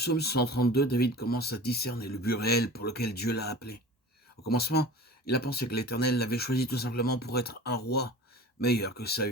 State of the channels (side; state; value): both; normal; correlation 0.38